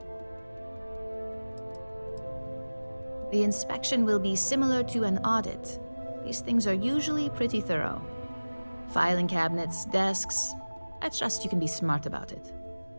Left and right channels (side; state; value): both; inverted; correlation -1.00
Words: The inspection will be similar to an audit. These things are usually pretty thorough. Filing cabinets, desks. I trust you can be smart about it.